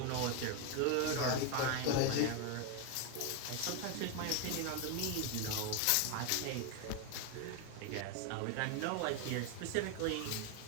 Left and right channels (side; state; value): both; different; correlation 0.01